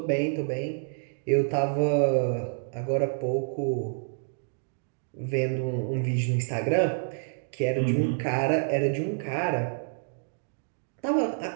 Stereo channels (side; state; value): left; silent; digital silence